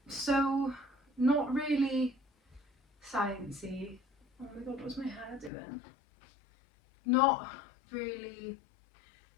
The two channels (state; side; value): drops out; right; at 5.5 s